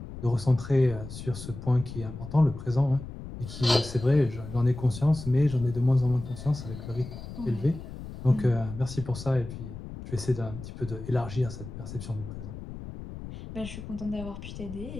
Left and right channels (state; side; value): noise; left; rumble, 11 dB below the sound